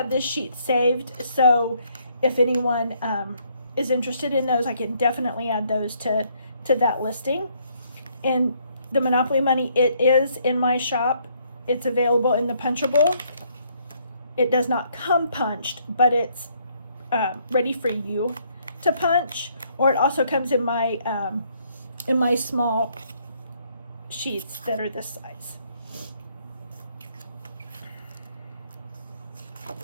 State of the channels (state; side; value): inverted; both; correlation -0.68